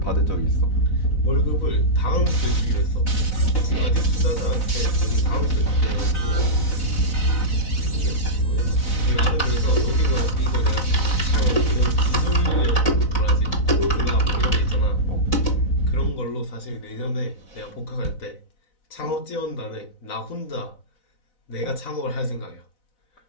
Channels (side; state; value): right; late; 4.0 ms